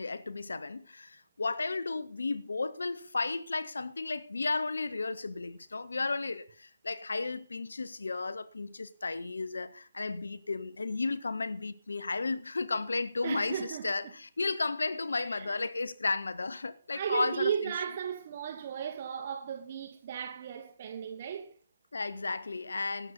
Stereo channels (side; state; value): both; inverted; correlation -0.88